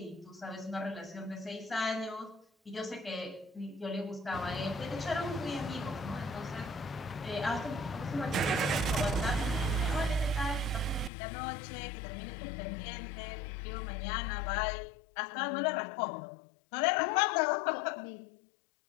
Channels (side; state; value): right; drops out; at 11.1 s